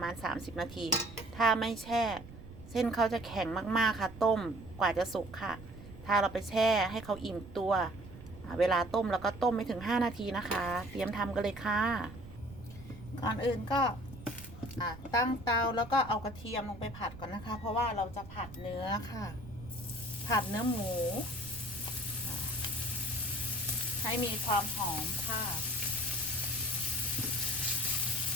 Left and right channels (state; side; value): noise; right; rumble, 16 dB below the sound